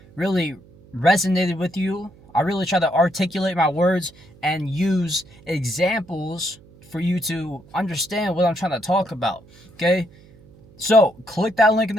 really resonated with you. I really try to articulate my words and use examples for you to understand what I'm trying to talk about, okay? So click that link in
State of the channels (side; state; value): right; noise; hum, 25 dB below the sound